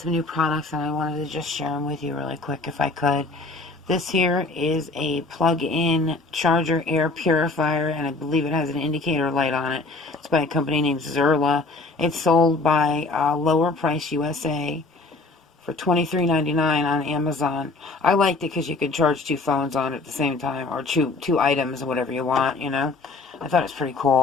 new products and I wanted to just share them with you really quick if I could. This here is a plug-in charger air purifier, and I believe it has an indicator light on it. It's by a company named Zerla. It's sold by Lower Price USA for $23.99 on Amazon. I liked it because you could charge two phones on it at the same time, or two items, or whatever you want, you know. I thought it was pretty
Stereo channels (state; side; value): quieter; right; 3.5 dB